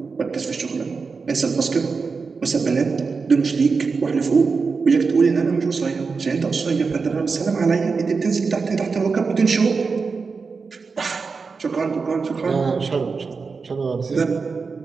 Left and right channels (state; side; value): quieter; left; 4.8 dB